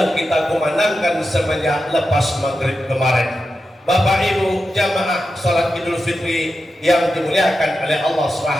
kita kumandangkan semenjak lepas maghrib kemarin. Bapak Ibu jamaah salat Idul Fitri yang dimuliakan oleh Allah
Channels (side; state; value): both; normal; correlation 0.90